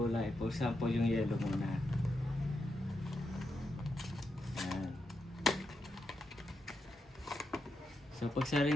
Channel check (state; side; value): normal; both; correlation 0.85